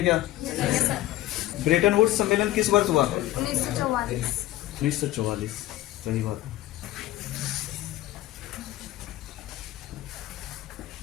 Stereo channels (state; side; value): quieter; right; 15.5 dB